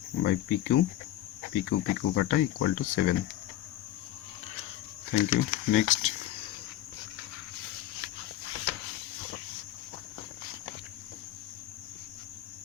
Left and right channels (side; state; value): right; quieter; 13.9 dB